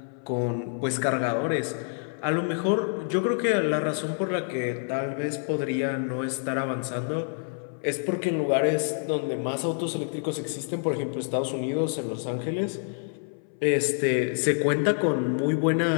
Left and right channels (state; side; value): silent; right; 60 dB below the other